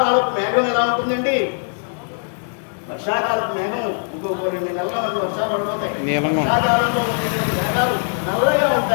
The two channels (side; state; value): right; silent; 65 dB below the other